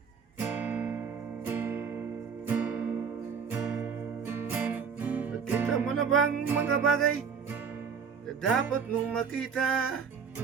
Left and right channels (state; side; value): quieter; left; 6.3 dB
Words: Nakita mo na bang mga bagay na dapat mong makita?